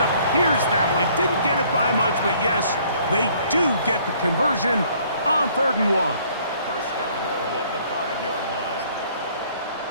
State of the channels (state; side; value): inverted; both; correlation -0.60